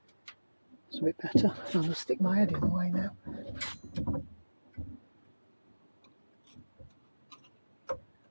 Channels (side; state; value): both; inverted; correlation -1.00